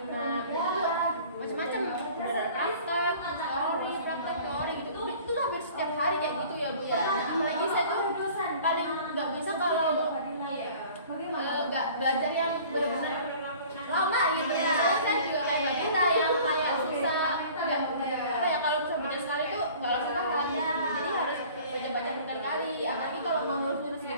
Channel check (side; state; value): both; inverted; correlation -0.47